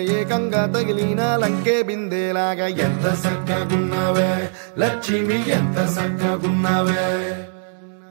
ఏకంగా తగిలిన లంకే బిందేలాగా ఎంత సక్కగున్నావే లక్ష్మి ఎంత సక్కగున్నావే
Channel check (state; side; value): silent; left; digital silence